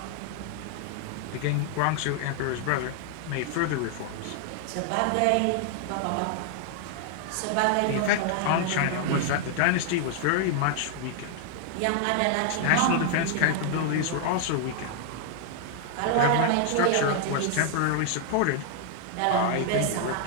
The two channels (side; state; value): both; different; correlation 0.00